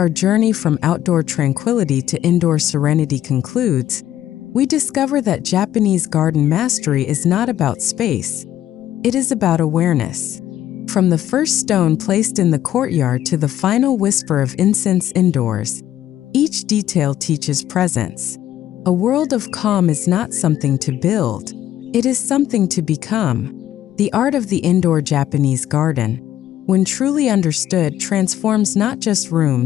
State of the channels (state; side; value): quieter; right; 12.1 dB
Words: journey from outdoor tranquility to indoor serenity concludes, we discover that Japanese garden mastery is not about space. It is about awareness. From the first stone placed in the courtyard to the final whisper of incense indoors, each detail teaches presence. A world of calm is not something to build. It is something to become. The art of the indoor Japanese garden, when truly understood, transforms not just